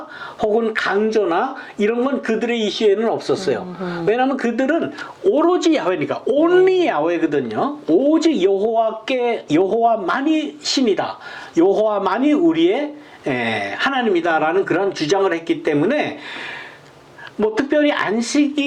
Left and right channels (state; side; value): identical; both; correlation 1.00